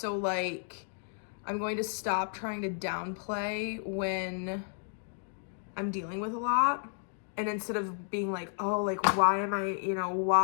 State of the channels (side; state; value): right; silent; 56 dB below the other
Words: I'm going to stop trying to downplay when I'm dealing with a lot. And instead of being oh, why am I,